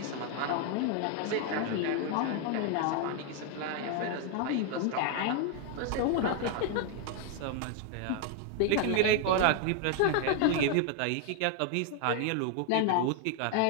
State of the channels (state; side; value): different; both; correlation 0.00